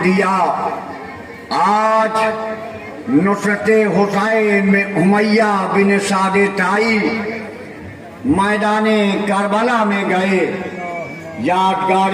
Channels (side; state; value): both; identical; correlation 1.00